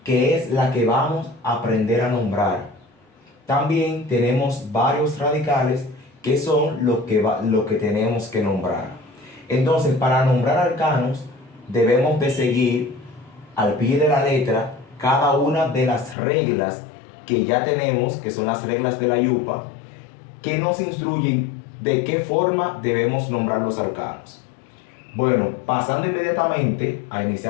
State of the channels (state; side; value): drops out; right; at 16.2 s